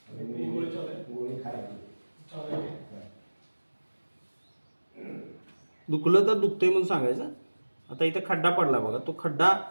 दुखलं तर दुखतंय म्हणून सांगायचं. आता इथं खड्डा पडला बघा, तो खड्डा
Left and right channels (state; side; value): inverted; both; correlation -1.00